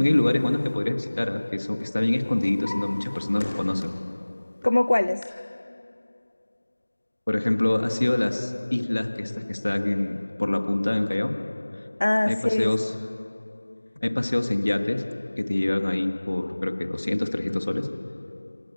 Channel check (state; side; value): inverted; both; correlation -1.00